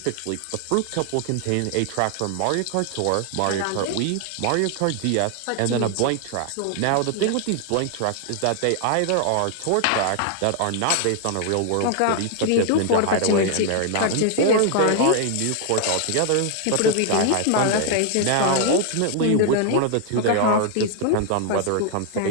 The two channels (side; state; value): both; different; correlation 0.00